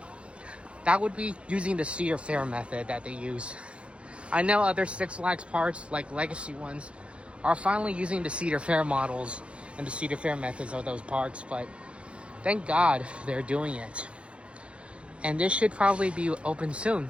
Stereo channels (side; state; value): left; late; 0.060 ms